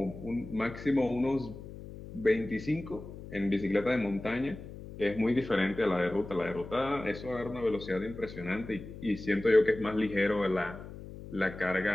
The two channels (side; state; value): left; noise; hum, 13 dB below the sound